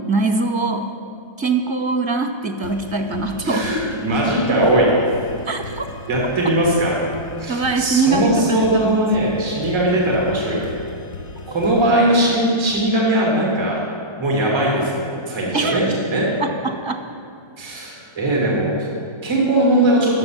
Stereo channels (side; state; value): left; late; 1.3 ms